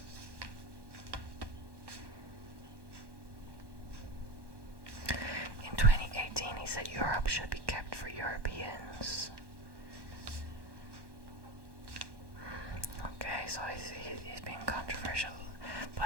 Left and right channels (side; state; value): left; late; 1.1 ms